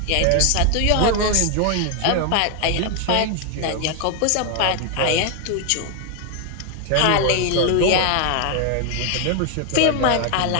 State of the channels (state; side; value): different; both; correlation 0.01